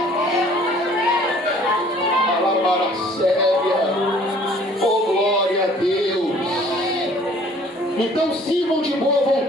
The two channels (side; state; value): both; normal; correlation 0.54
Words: Palavra séria. Oh, glória a Deus. Então sirvam de boa